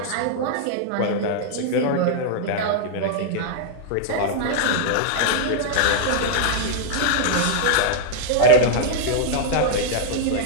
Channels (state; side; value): different; both; correlation 0.00